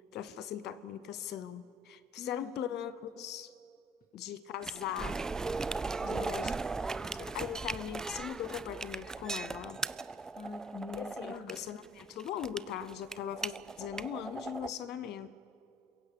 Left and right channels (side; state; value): both; normal; correlation 0.57